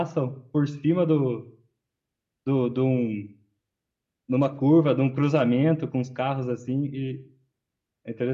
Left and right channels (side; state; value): both; identical; correlation 1.00